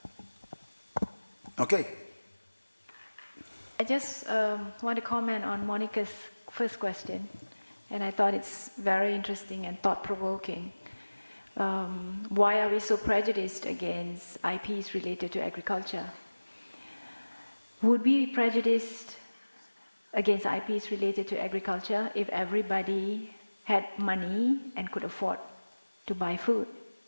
Okay. I just want to comment on Monica's first question, and I thought it's very interesting and thought-provoking. Why are we so prejudiced against IPs related to agriculture? Would we be prejudiced against IPs related to agriculture if everybody had money and could afford to buy food?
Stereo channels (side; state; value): both; inverted; correlation -1.00